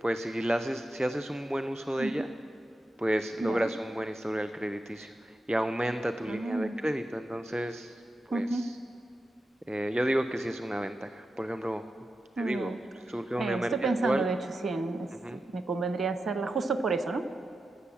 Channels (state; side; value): normal; both; correlation 0.90